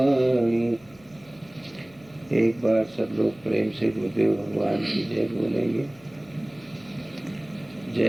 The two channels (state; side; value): noise; left; hum, 27 dB below the sound